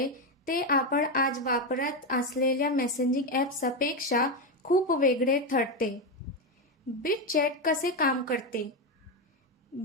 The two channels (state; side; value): normal; both; correlation 0.10